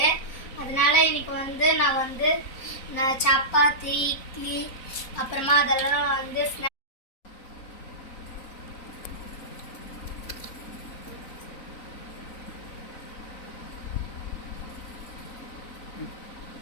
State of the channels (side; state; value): right; late; 3.9 ms